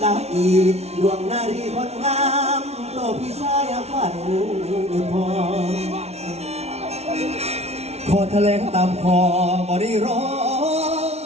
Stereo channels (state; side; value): late; left; 0.31 ms